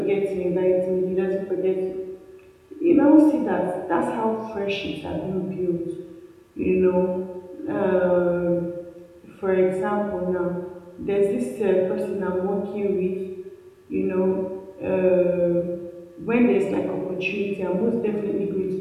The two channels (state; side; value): identical; both; correlation 1.00